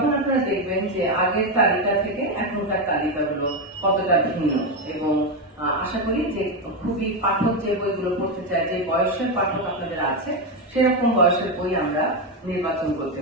আপনারা দেখবেন যে আগের তালিকা থেকে এখনকার তালিকাগুলো কতটা ভিন্ন, এবং আশা করি যে খুবই পাঠক যে বইগুলো পড়তে চায়, যে বয়সের পাঠক আপনাদের আছে সেরকম বয়সের বই আমরা নির্বাচন করতে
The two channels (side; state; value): both; normal; correlation 0.09